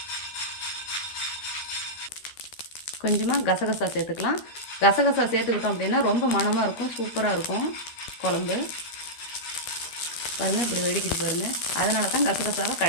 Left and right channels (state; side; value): late; right; 12 ms